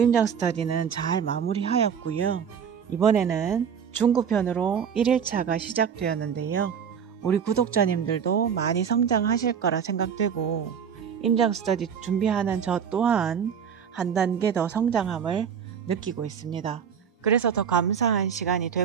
임장 스터디는 잘 마무리하였고요. 이번에는 중구편으로 1일차가 시작되었는데요. 우리 구독자님들도 많이 성장하실 거라 생각되고 임장 스터디 준비하는 저 또한 한 단계 더 성장함을 느끼고 있습니다. 그래서 더 감사한 시간이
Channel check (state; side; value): quieter; left; 7.5 dB